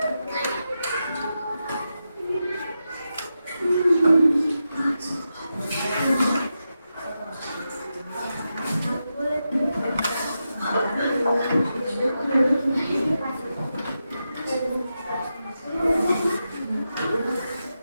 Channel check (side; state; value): both; inverted; correlation -0.89